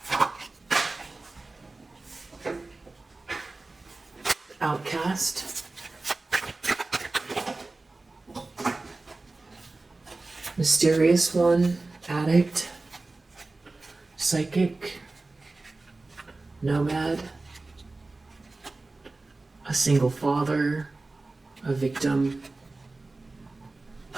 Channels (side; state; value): left; quieter; 3.3 dB